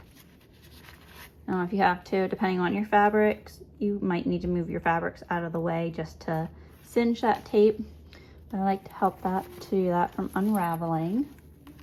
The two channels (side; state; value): both; identical; correlation 1.00